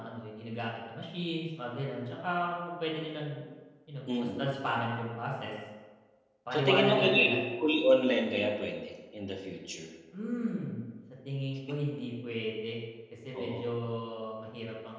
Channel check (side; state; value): both; identical; correlation 1.00